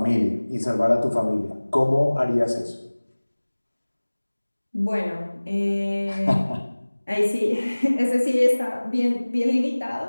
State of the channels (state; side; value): inverted; both; correlation -1.00